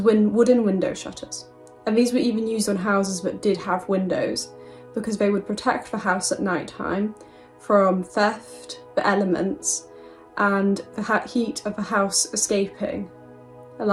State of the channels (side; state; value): both; identical; correlation 1.00